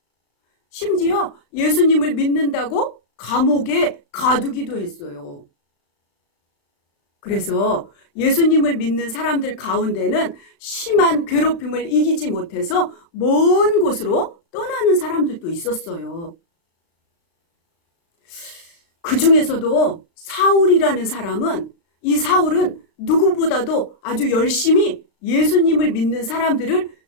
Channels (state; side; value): late; right; 36 ms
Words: 심지어 예수님을 믿는다고 감옥에 가두기도 했어요. 그래서 예수님을 믿는 사람들 가운데는 심한 괴롭힘을 이기지 못해서 먼 곳으로 떠나는 사람들도 있었어요. 그 중에서도 사울이라는 사람은, 이 사울은 누구보다도 아주 열심히 예수님을 믿는 사람들을